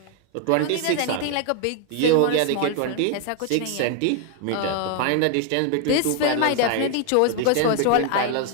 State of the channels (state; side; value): different; both; correlation 0.00